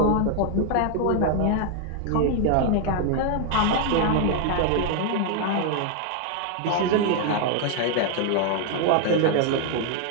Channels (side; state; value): both; different; correlation 0.01